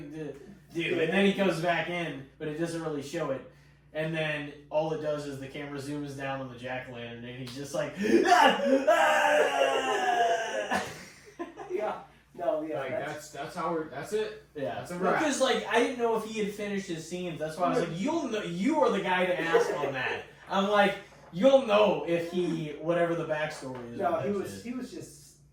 to do," and then he goes back in, but it doesn't really show it. And then all it does is the camera zooms down on the jack-o'-lantern, and he's just like, yeah, no, yeah, Like that's it. yeah. That's a wrap. Because like I didn't know if he had finished his scenes. That's why I was like, you'll know. You are the guy to ask on that. I'm like, you'll know if he whatever the backstory is. no, with he that was shit. he was just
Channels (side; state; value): both; identical; correlation 1.00